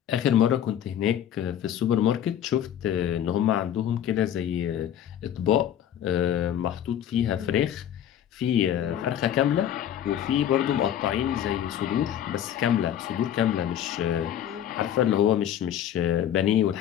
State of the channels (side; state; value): right; quieter; 10.3 dB